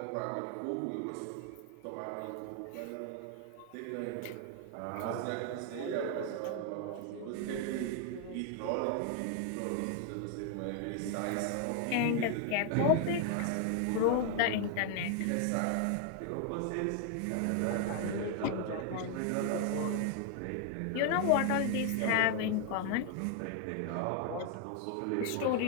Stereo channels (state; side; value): different; both; correlation 0.00